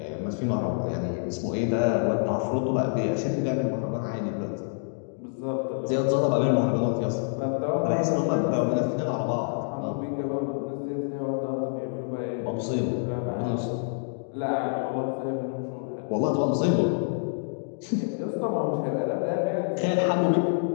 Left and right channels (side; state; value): right; silent; digital silence